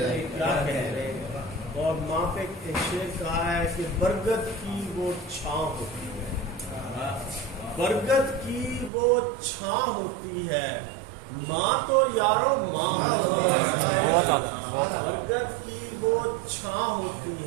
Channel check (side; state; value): left; drops out; at 8.9 s